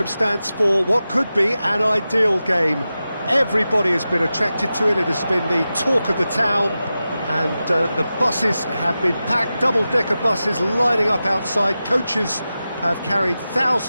for what could be an ideal game. Everybody has been attracted to it. It has been the talk of the town and the buses have been packed, double-decker buses lining up outside. Coaches have carried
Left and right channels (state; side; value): inverted; both; correlation -0.93